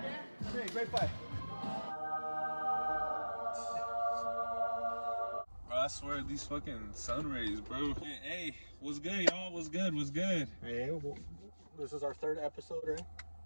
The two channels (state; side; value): inverted; both; correlation -1.00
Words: Dan? Hey, great fight. Bro, I swear these fucking sun rays, bro. Hey, what's good, y'all? What's good? What's good? Hey, well, this is our third episode, right?